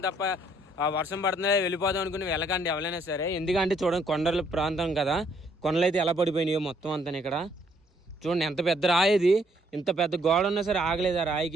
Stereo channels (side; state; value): both; normal; correlation 0.67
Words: తప్ప ఆ వర్షం పడుతుందా వెళ్ళిపోదాం అనుకుని వెళ్ళకండి ఎవరైనా సరే. ఎందుకంటే చూడండి కొండల ప్రాంతం కదా, కొండలు అయితే ఎలా పడిపోయినాయో మొత్తం అంతా ఇక్కడ చూడండి. ఎంత పెద్ద రాయి ఇది, ఇంత పెద్ద గోడ ఉన్నా సరే ఆగలేదు ఆ